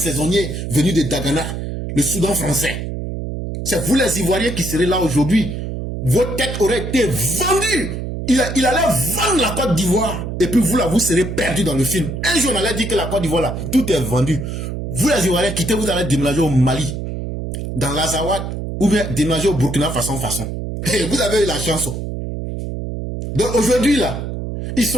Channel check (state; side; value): noise; right; hum, 5 dB below the sound